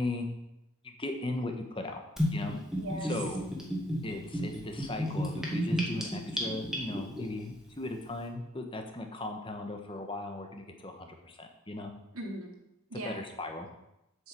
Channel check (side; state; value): both; normal; correlation 0.68